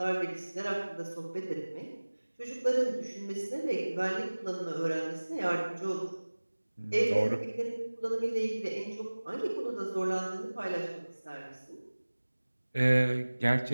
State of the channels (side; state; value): both; inverted; correlation -1.00